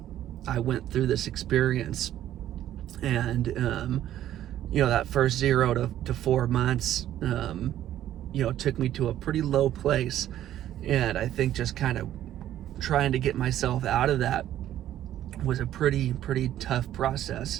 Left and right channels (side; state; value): left; quieter; 12.2 dB